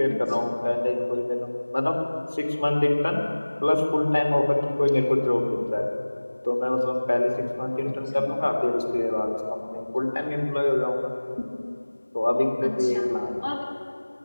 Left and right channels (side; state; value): both; inverted; correlation -1.00